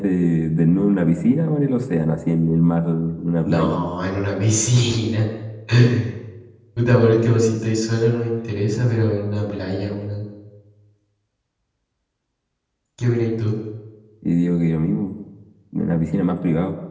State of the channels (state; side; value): identical; both; correlation 1.00